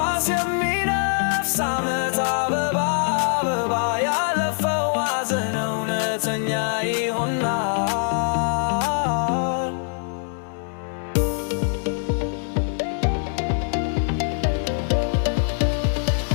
የሚነፍስ ዓመት አበባ አበባ ያለፈው ሐዘን እውነተኛ ይሆናል።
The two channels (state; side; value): silent; right; 63 dB below the other